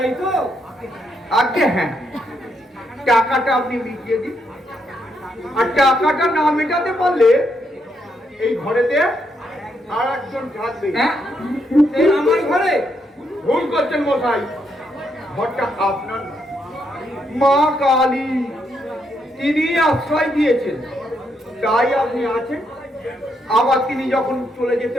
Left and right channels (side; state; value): both; normal; correlation 0.78